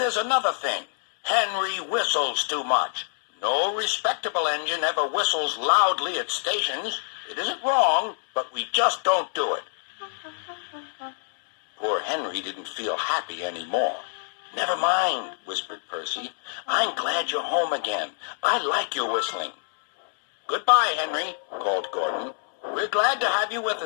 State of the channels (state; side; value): silent; right; digital silence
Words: another thing. Henry whistles too much. No respectable engine ever whistles loudly at stations. It isn't wrong, but we just don't do it." Poor Henry didn't feel happy anymore. "Never mind," whispered Percy. "I'm glad you're home again. I like your whistling." "Goodbye, Henry," called Gordon. "We're glad to have you with